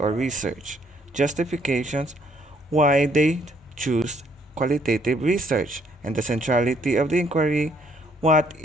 research? Justifications. Why they choose qualitative research. And the centrality of the inquiry. What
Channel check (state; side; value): normal; both; correlation 0.67